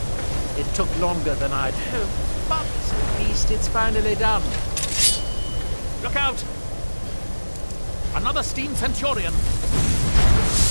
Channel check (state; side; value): inverted; both; correlation -1.00